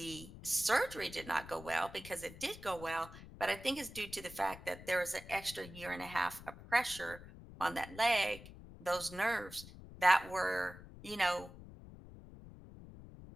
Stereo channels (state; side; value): noise; left; rumble, 16 dB below the sound